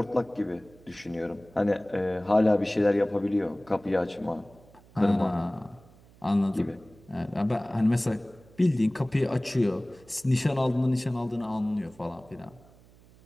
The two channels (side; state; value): right; noise; hum, 26 dB below the sound